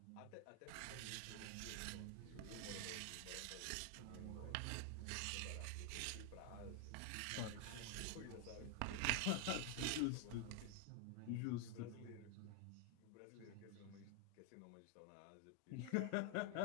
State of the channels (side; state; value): both; different; correlation 0.00